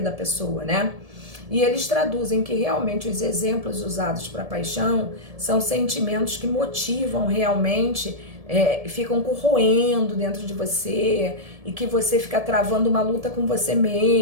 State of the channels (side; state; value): left; late; 1.7 ms